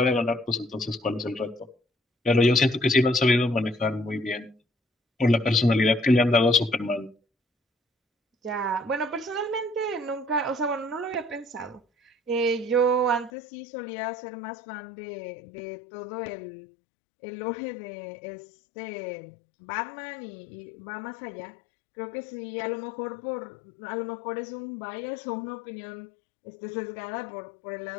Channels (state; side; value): drops out; right; at 13.3 s